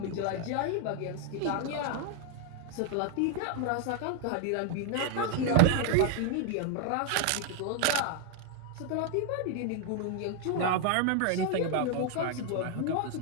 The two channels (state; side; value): different; both; correlation 0.00